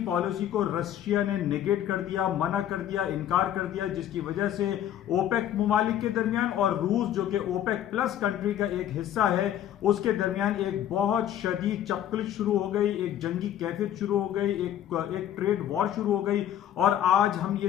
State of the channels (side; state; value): right; quieter; 11.0 dB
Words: पॉलिसी को रशिया ने नेगेट कर दिया, मना कर दिया, इनकार कर दिया, जिसकी वजह से ओपेक मुमालिक के दरमियान और रूस जो कि ओपेक प्लस कंट्री का एक हिस्सा है उसके दरमियान एक बहुत शदीद चपकलिश शुरू हो गई, एक जंगी कैफियत शुरू हो गई, एक ट्रेड वॉर शुरू हो गई। और आज हम